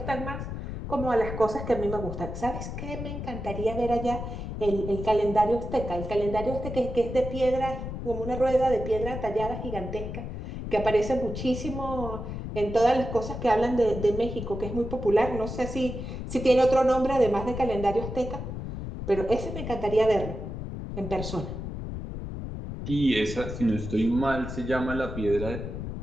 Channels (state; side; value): noise; left; rumble, 7 dB below the sound